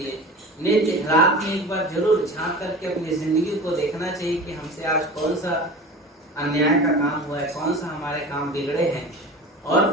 नित्य रात में एक बार जरूर झांक करके अपनी जिंदगी को देखना चाहिए कि हमसे आज कौन सा अन्याय का काम हुआ है, कौन सा हमारे काम बिगड़े हैं, और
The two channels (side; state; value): both; normal; correlation 0.35